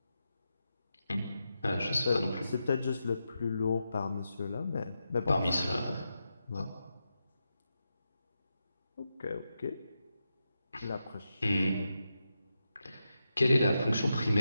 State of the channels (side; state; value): both; inverted; correlation -0.88